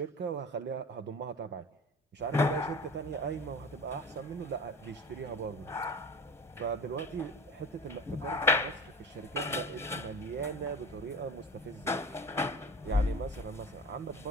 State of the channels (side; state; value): both; normal; correlation 0.34